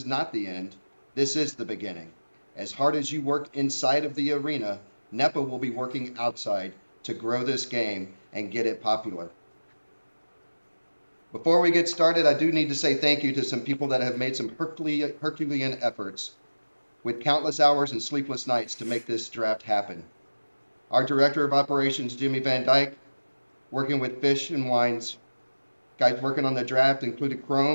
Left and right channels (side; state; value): both; inverted; correlation -1.00